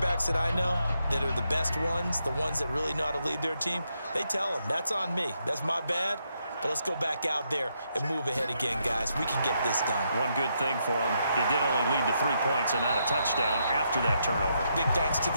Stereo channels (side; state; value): both; inverted; correlation -0.79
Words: that I know that are the best ones, the ones that really know how to lead their team, they tell them, that's on me. That's my bad. But let's go back out there and move ahead again, guys. We can get this done. One good thing for him, it did only lead to 3 points and not a touchdown after that turnover. Big thanks to